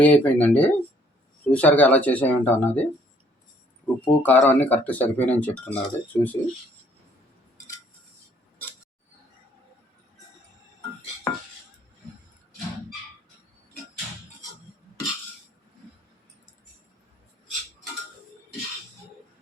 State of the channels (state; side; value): normal; both; correlation 0.63